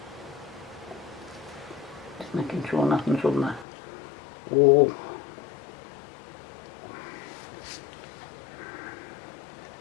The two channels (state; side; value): drops out; right; at 3.7 s